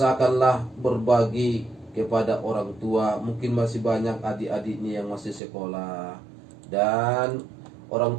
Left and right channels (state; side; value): drops out; left; at 5.4 s